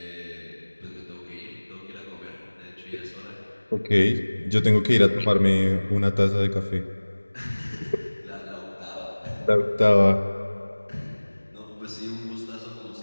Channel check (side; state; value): both; inverted; correlation -1.00